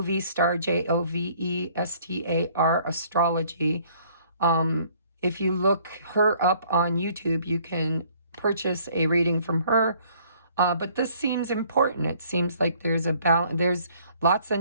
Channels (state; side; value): inverted; both; correlation -0.60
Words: Jovestar astrology. If you look her up on YouTube, you can purchase a reading from her. But this seems important. It seems like there's a balance. There's lots